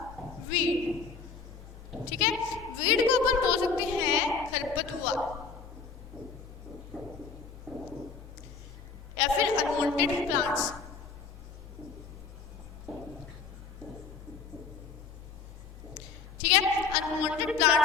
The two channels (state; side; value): quieter; right; 5.0 dB